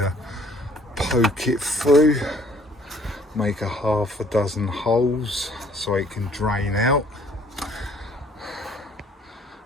poke it through. Make a half a dozen holes so it can drain out,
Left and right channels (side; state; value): both; normal; correlation 0.59